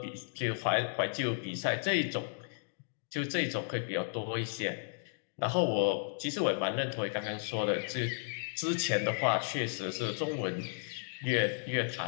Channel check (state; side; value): silent; right; digital silence